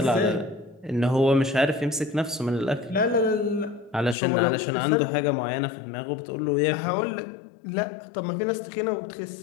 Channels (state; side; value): drops out; right; at 4.2 s